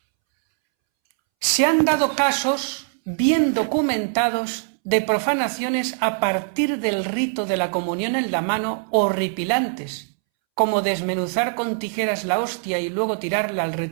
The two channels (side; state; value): left; silent; 64 dB below the other